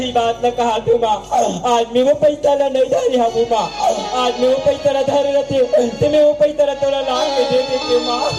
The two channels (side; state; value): both; identical; correlation 1.00